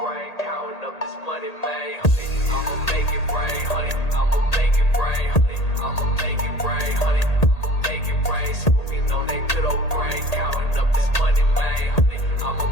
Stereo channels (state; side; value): late; right; 1.8 ms